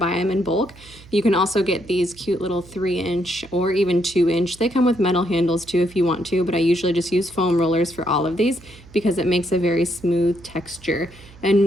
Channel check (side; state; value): right; noise; hum, 22 dB below the sound